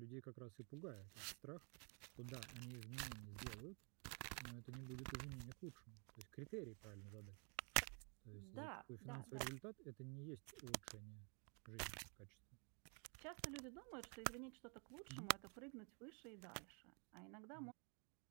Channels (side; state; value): left; quieter; 37.6 dB